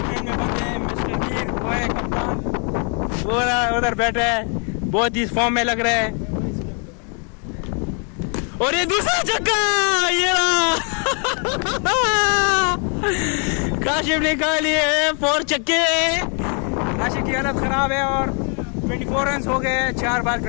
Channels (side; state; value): right; quieter; 39.4 dB